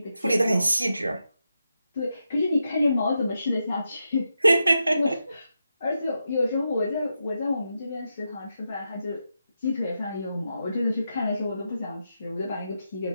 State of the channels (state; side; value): inverted; both; correlation -0.86